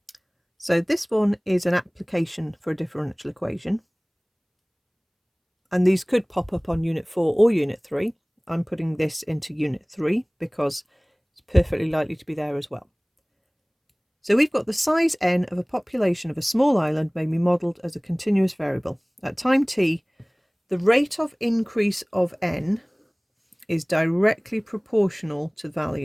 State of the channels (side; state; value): both; identical; correlation 1.00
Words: So this one is an application for a differential equation. And these could pop up on Unit 4 or Unit 3. I'm putting this into Unit 3 because it's perfectly likely to be there as well. So we've got the size n of a population of a small island may be modelled as a continuous variable. At time t, the rate of increase of n is directly proportional to the